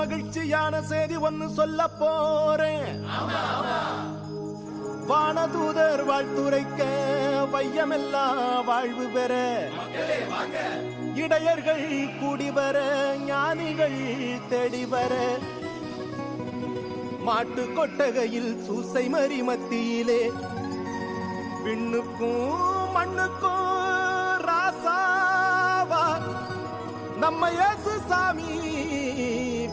செய்தி ஒன்னு சொல்ல போறேன். வானதூதர் வாழ்த்துரைக்க வையமெல்லாம் வாழ்வு பெற, இடையர்கள் கூடி வர, ஞானிகள் தேடி வர, மாட்டு கொட்டகையில் சூசை மறி மத்தியிலே விண்ணுக்கும் மண்ணுக்கும் ராசாவா நம்ம இயேசு சாமி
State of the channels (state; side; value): identical; both; correlation 1.00